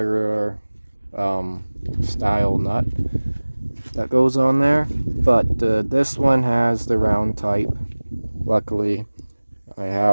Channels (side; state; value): both; inverted; correlation -1.00